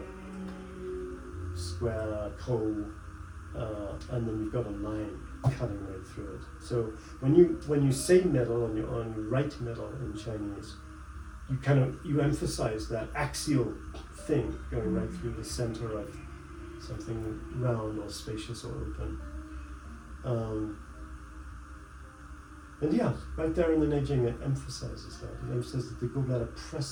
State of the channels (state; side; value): identical; both; correlation 1.00